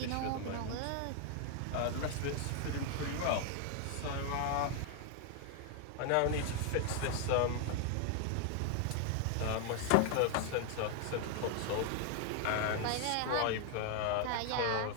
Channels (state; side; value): different; both; correlation 0.00